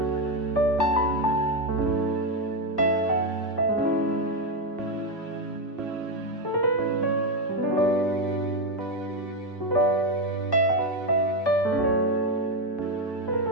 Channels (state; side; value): normal; both; correlation 0.08